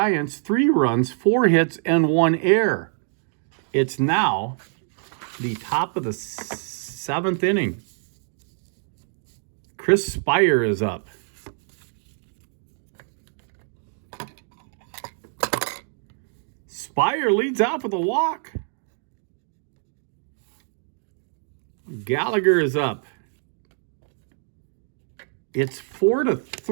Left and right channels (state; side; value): silent; left; 58 dB below the other